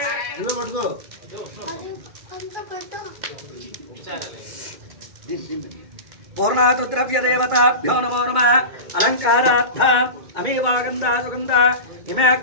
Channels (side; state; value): left; late; 2.3 ms